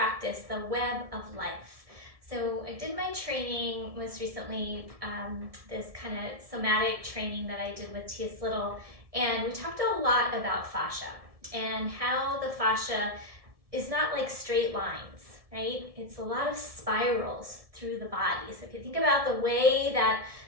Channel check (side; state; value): left; late; 1.7 ms